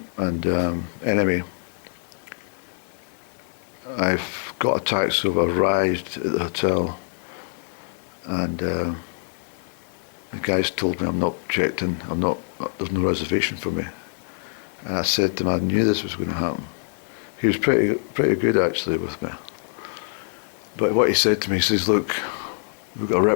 And anyway, I've got a taxi, so I've arrived at the hotel, and the guys told me I'm not checked in, there's no reservation for me. And I said to him, I knew this was going to happen. He was pretty good actually with me. But what he said to me, he says, look, we've got a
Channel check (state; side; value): silent; right; 56 dB below the other